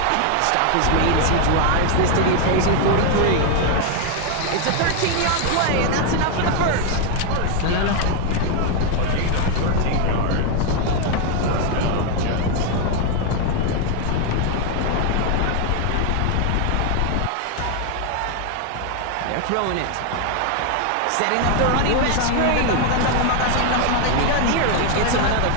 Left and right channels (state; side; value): different; both; correlation 0.01